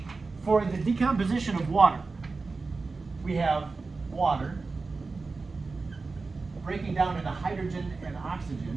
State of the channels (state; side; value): quieter; left; 4.0 dB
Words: for the decomposition of water, we have water breaking down into hydrogen and